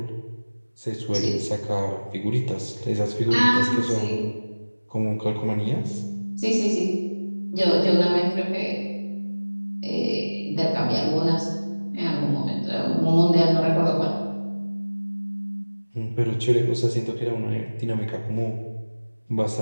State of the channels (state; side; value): inverted; both; correlation -1.00